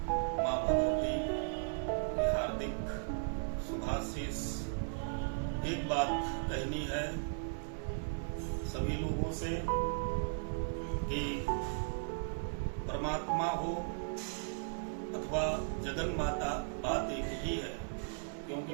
मां भगवती की हार्दिक शुभाशीष। एक बात कहनी है सभी लोगों से कि परमात्मा हो अथवा जगन माता, बात एक ही है। क्योंकि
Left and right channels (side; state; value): left; silent; digital silence